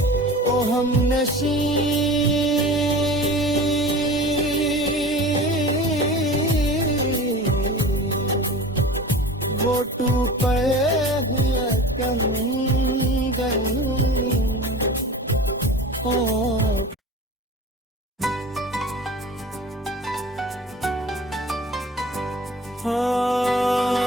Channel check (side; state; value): both; normal; correlation 0.37